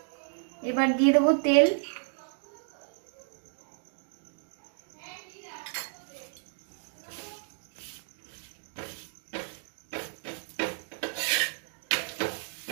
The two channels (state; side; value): silent; left; digital silence